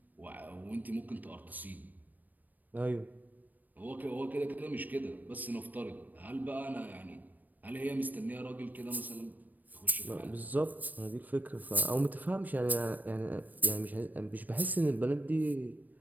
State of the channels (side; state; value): left; late; 0.086 ms